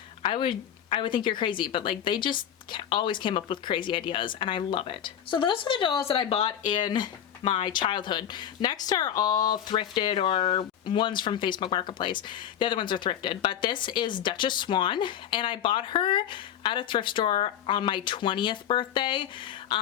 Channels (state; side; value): quieter; right; 9.9 dB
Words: I would think you're crazy, but like they just always came up with crazy ideas and I love it. So those are the dolls that I bought in my childhood. Next are all thrifted or ones from Facebook Marketplace. The other ones are thrifted, but this is Duchess Swan, and I bought her at a thrift store on my 20th birthday.